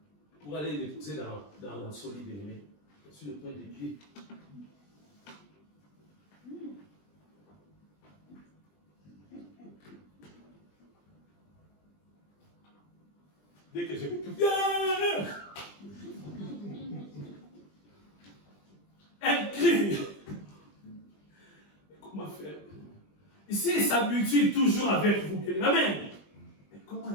Pour aller l'épouser dans la solide, bien aimé. Sur le point des pieds. Dès que j'ai vu tout, un cri. Comment faire? Ici, il s'habitue toujours avec vous. Amen. Mais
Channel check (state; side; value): late; right; 20 ms